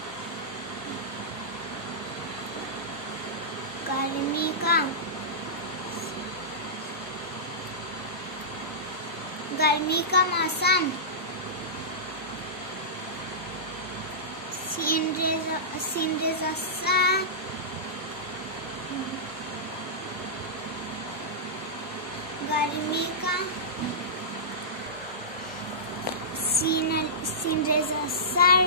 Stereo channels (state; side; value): normal; both; correlation -0.17